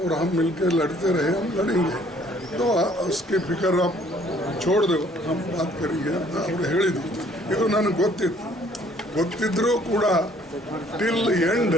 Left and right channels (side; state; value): both; normal; correlation 0.60